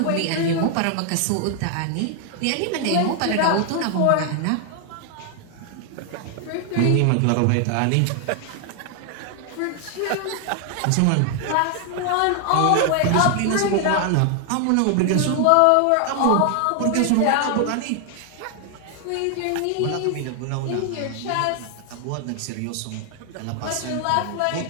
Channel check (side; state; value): both; different; correlation 0.00